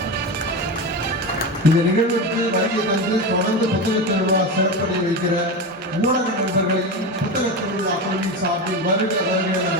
இந்த நிகழ்வுக்கு வருகை தந்து தொடர்ந்து புத்தக திருவிழா சிறப்படை வைக்கிற ஊடக நண்பர்களையும் புத்தக திருவிழா குழுவின் சார்பில் வருக வருக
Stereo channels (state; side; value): normal; both; correlation 0.21